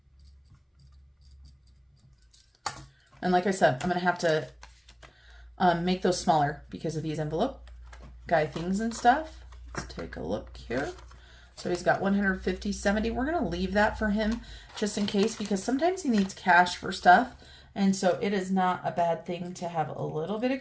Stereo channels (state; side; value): identical; both; correlation 1.00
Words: And like I said, I'm going to have to make those smaller because of these envelope guy things and stuff. Let's take a look here. So he's got 150, 70. We're going to leave that for him just in case because sometimes he needs cash for stuff. And so it is not a bad thing to have a little bit